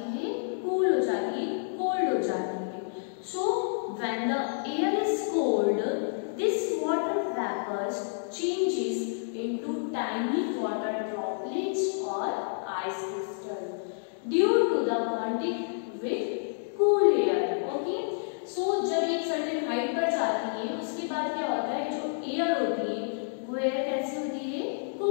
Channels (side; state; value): right; silent; 58 dB below the other